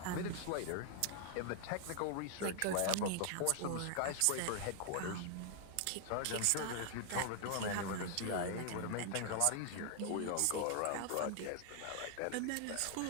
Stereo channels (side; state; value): both; different; correlation 0.00